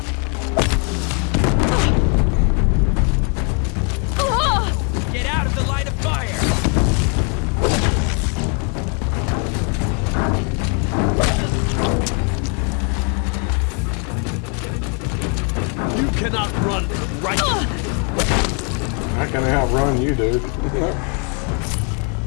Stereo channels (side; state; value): right; quieter; 37.8 dB